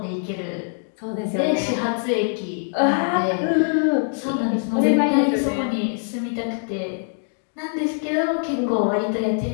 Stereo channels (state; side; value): silent; right; digital silence